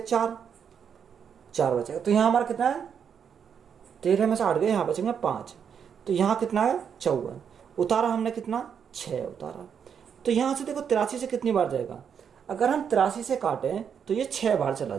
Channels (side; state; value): left; quieter; 7.5 dB